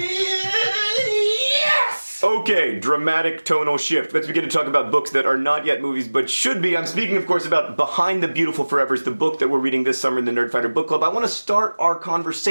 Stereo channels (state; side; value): inverted; both; correlation -1.00